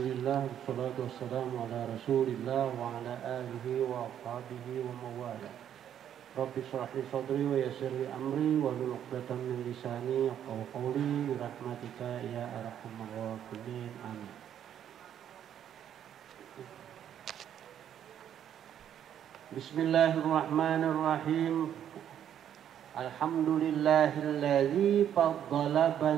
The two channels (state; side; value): quieter; left; 9.9 dB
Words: wassalatu wassalamu ala rasulillah wa ala alihi wa ashabihi wa mawala. Rabbi shrah li sadri wa yassir li amri wa hlul 'uqdatam min lisani yafqahu qawli bi rahmatika ya arhamar rahimin. Amin. Bismillahirrahmanirrahim. Alhamdulillahilladzi faddala